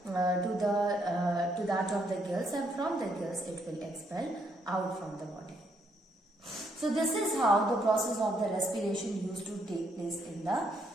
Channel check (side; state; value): both; normal; correlation 0.73